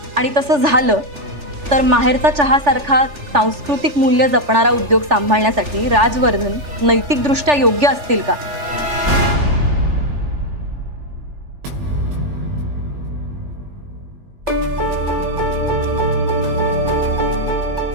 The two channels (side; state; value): left; late; 3.4 ms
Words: आणि तसं झालं तर माहेरचा चहासारखा सांस्कृतिक मूल्य जपणारा उद्योग सांभाळण्यासाठी राजवर्धन नैतिकदृष्ट्या योग्य असतील का?